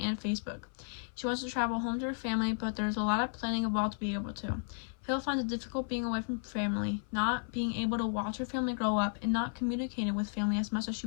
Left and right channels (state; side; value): silent; right; 55 dB below the other